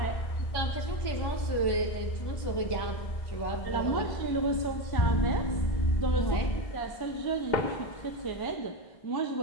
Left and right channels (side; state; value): right; late; 1.2 ms